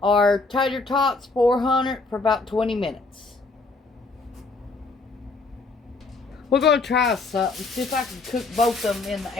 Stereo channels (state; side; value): quieter; right; 3.7 dB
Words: tater tots 400 for about 20 minutes. We're going to try something. See if I can cook both of them in the